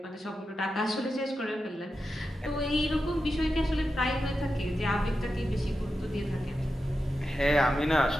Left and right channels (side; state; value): both; normal; correlation 0.90